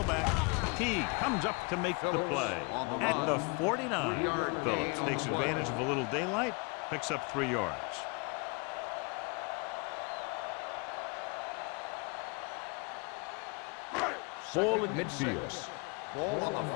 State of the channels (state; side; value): quieter; right; 31.0 dB